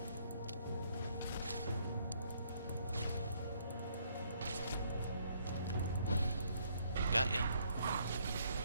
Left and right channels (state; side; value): inverted; both; correlation -0.68